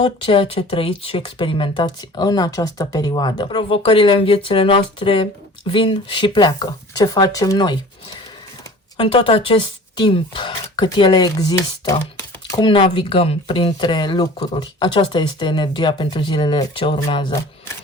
ceea ce trăiți și experimentați în această perioadă. Provocările în viețile noastre vin și pleacă. Ce facem noi? În tot acest timp cât ele există, cum navigăm printre lucruri? Aceasta este energia pentru zilele ce urmează.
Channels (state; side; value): normal; both; correlation 0.44